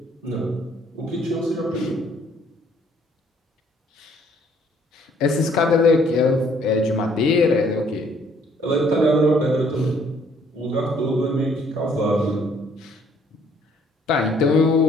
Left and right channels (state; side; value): normal; both; correlation 0.63